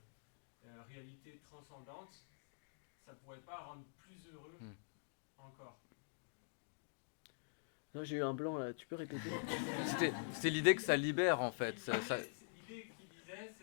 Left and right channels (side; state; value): right; silent; digital silence